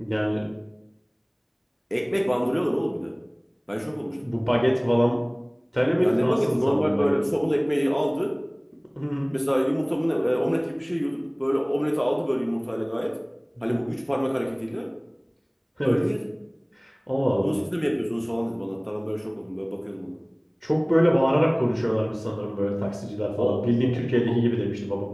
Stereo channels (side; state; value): both; identical; correlation 1.00